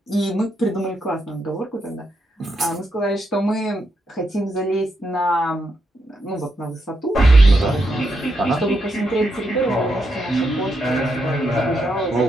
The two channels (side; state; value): both; normal; correlation 0.82